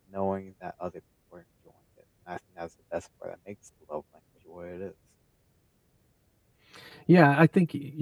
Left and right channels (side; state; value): both; identical; correlation 1.00